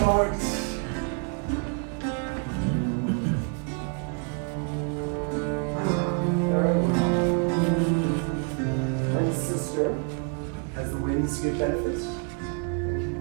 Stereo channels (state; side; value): quieter; left; 39.9 dB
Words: And sister, as the winds give benefit, and